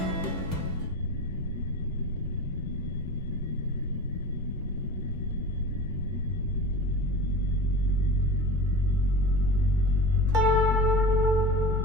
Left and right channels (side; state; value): both; normal; correlation 0.34